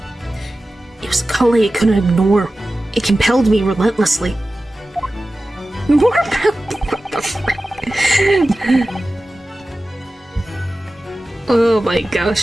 It was a calling I couldn't ignore. It compelled me relentlessly. More about what the frick? Oh my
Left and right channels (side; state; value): both; normal; correlation 0.95